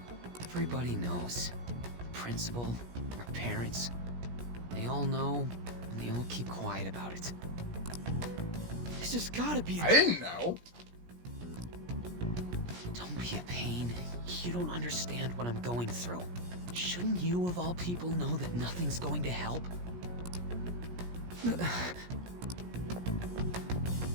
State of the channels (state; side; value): late; left; 17 ms